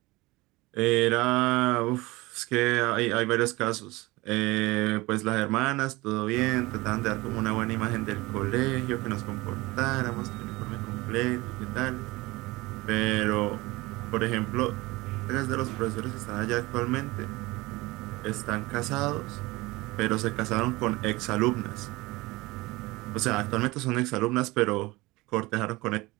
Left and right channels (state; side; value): quieter; left; 21.5 dB